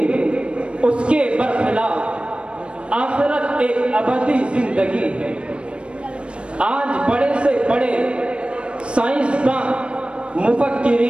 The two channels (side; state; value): left; late; 0.058 ms